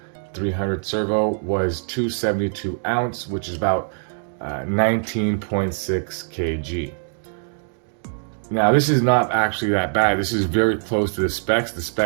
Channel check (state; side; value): silent; left; digital silence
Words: 300 servo was 272 ounce, which is about 19.6 kg. Now this is not actually that bad. This is very close to the specs. The